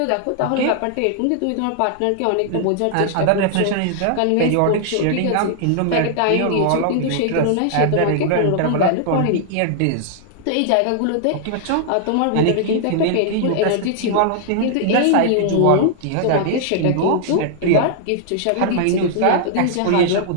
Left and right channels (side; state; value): both; different; correlation -0.01